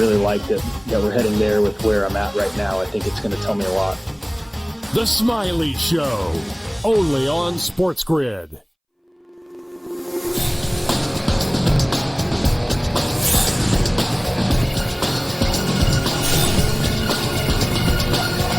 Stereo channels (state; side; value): identical; both; correlation 1.00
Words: like that we're heading there with where I'm at right now. I think it's going to tell me a lot. The Smiley Show, only on SportsGrid.